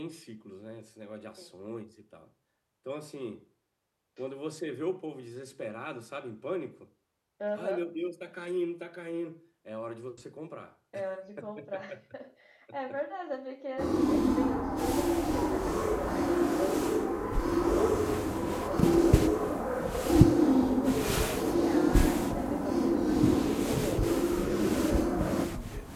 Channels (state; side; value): identical; both; correlation 1.00